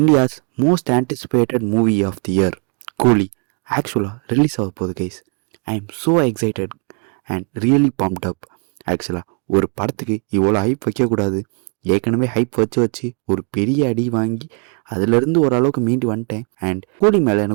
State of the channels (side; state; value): left; quieter; 39.1 dB